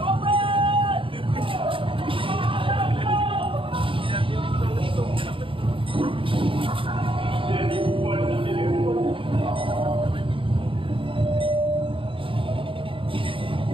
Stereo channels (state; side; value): late; left; 0.25 ms